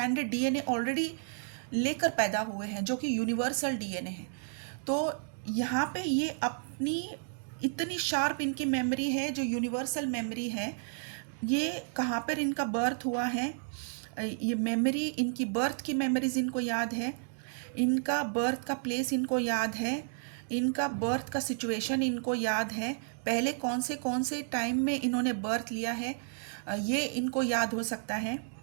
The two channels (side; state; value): left; silent; digital silence